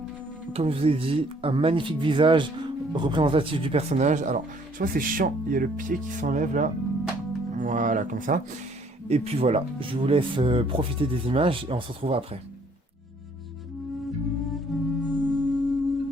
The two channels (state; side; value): normal; both; correlation 0.62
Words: comme je vous ai dit, un magnifique visage représentatif du personnage. Alors, je vois c'est chiant, il y a le pied qui s'enlève là. Voilà, comme ça. Et puis voilà, je vous laisse profiter des images et on se retrouve après.